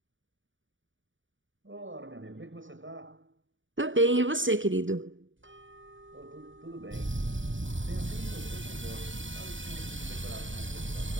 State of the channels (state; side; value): late; left; 0.56 ms